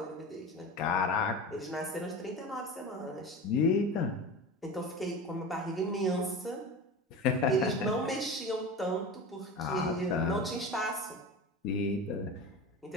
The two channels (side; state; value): both; normal; correlation 0.30